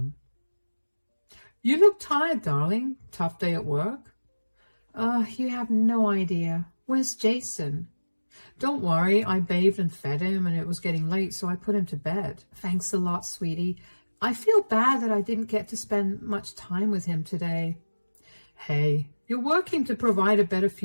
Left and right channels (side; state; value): both; inverted; correlation -1.00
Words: "You look tired, darling. Tough day at work?" You have no idea. Where's Jason?" "Don't worry, I bathed and fed him, and it was getting late, so I put him to bed." "Thanks a lot, sweetie. I feel bad that I didn't get to spend much time with him today." "Hey, you're working to provide a better